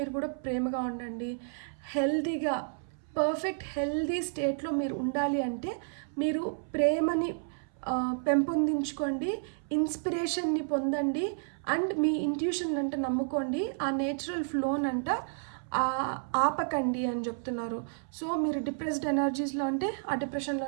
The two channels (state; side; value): silent; left; 57 dB below the other